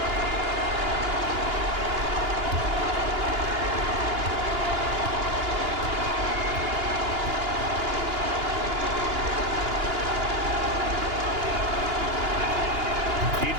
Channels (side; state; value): left; late; 2.9 ms